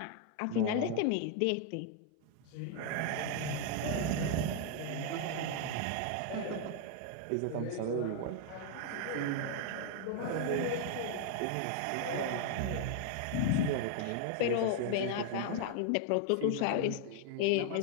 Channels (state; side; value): different; both; correlation 0.00